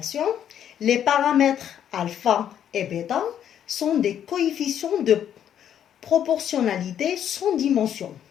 les paramètres alpha et bêta sont des coefficients de proportionnalité sans dimension.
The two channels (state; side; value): quieter; right; 9.7 dB